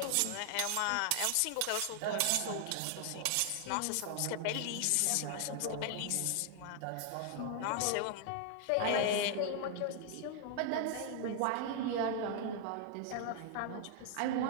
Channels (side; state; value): both; different; correlation 0.00